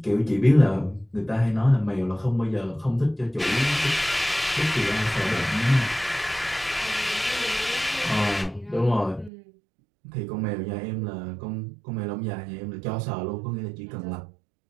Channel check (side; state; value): left; drops out; at 9.3 s